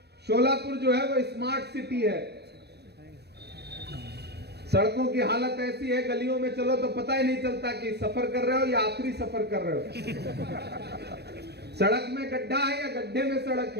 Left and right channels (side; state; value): left; late; 0.48 ms